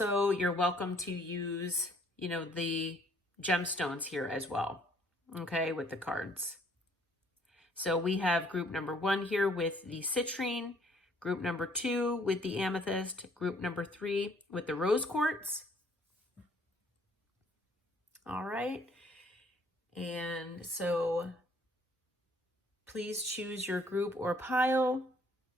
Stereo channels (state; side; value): normal; both; correlation 0.62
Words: you're welcome to use, the gemstones here as well, okay, with the cards. So we have group number 1 here with the citrine, group number 2 with the amethyst, group number 3 with the rose quartz. All right. And so please choose your group or pile.